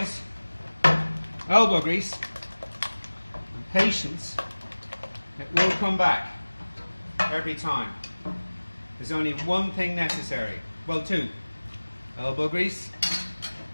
elbow grease and patience, it will come back every time. There's only one thing necessary, well, two: elbow grease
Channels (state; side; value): inverted; both; correlation -1.00